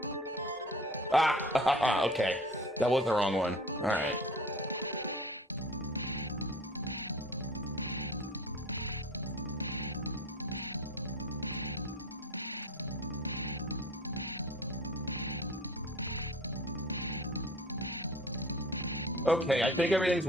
Ah, okay. That was the wrong one. All right. Okay, I think everything's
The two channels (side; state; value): both; normal; correlation 0.42